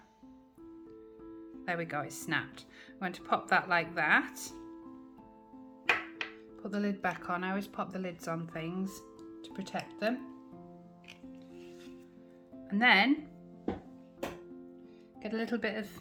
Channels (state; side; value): identical; both; correlation 1.00